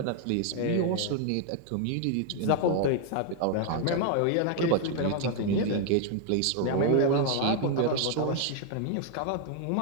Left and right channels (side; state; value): both; different; correlation 0.00